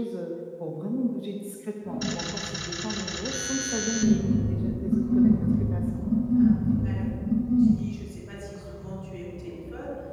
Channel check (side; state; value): both; identical; correlation 1.00